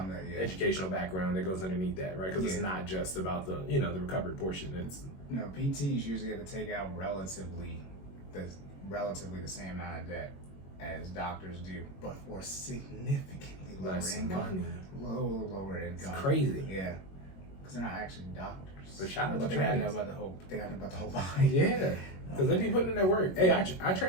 educational background that goes underneath that, right? Because it's not just about the the recovery portion. It's PTs usually have to take out relatively the same amount of debt as doctors do, but for significantly lower income. Lower income. It's crazy. Yeah, because they're not actually doctors. But shout out to they gotta know about the whole body. Yeah, because they be putting in that work. Hey, our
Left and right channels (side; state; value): right; late; 21 ms